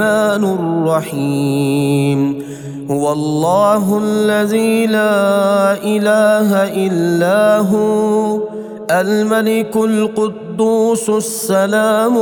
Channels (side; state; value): both; identical; correlation 1.00